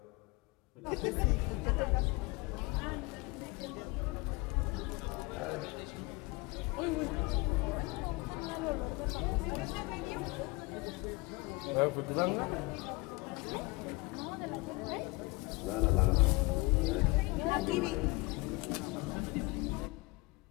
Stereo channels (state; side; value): quieter; right; 23.5 dB